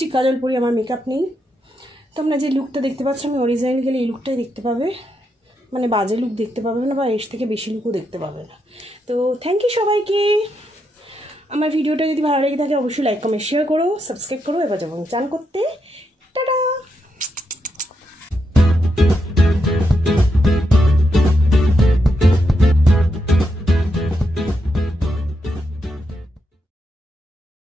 কাজল পরি, আমার মেকআপ নেই। তোমরা যে লুকটা দেখতে পাচ্ছ আমি অরিজিনাল গেলে এই লুকটাই দেখতে পাবে, মানে বাজে লুক দেখতে পাবে না বা এর থেকে বেশি লুকও দেখতে পাবে না। তো থ্যাংক ইউ সবাইকে। আমার ভিডিওটা যদি ভালো লেগে থাকে অবশ্যই লাইক কমেন্ট শেয়ার করো, সাবস্ক্রাইব করো। এবার যাবো চান করতে।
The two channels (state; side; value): normal; both; correlation 0.82